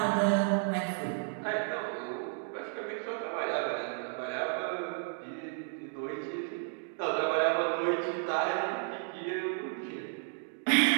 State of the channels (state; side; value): silent; left; 56 dB below the other